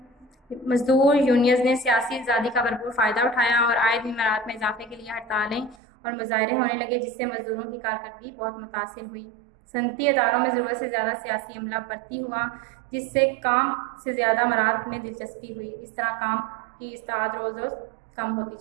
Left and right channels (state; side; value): drops out; left; at 5.8 s